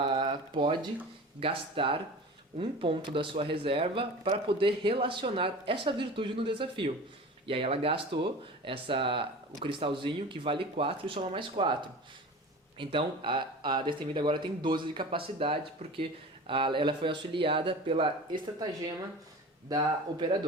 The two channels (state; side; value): normal; both; correlation 0.36